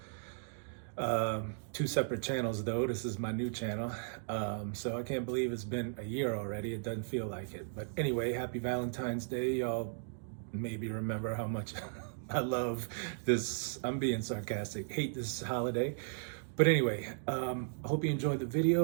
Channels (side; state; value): left; silent; digital silence